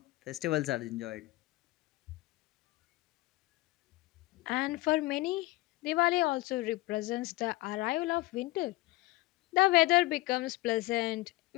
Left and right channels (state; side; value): quieter; right; 19.4 dB